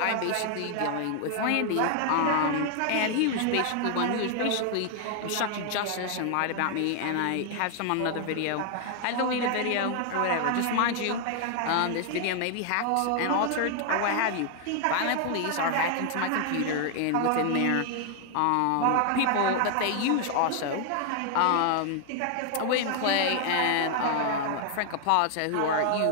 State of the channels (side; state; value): both; different; correlation 0.00